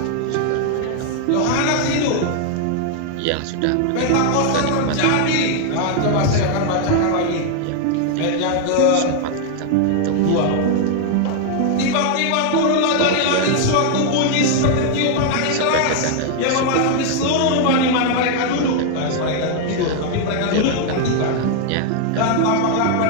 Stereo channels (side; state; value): both; different; correlation 0.00